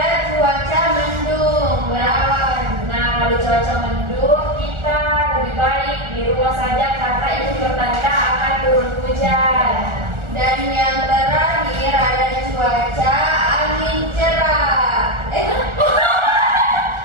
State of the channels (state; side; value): late; left; 1.4 ms